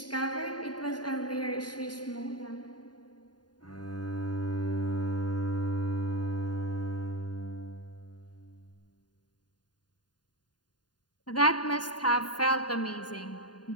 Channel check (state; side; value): late; right; 0.70 ms